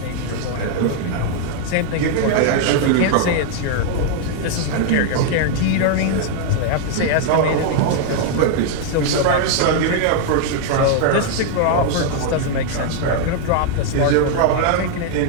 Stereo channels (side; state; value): both; different; correlation 0.00